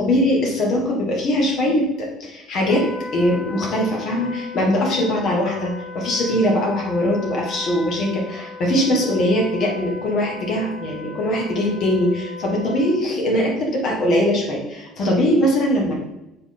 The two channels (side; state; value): both; normal; correlation 0.51